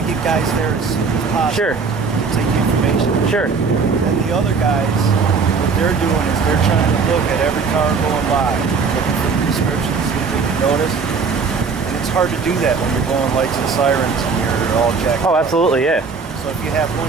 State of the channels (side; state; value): left; quieter; 5.0 dB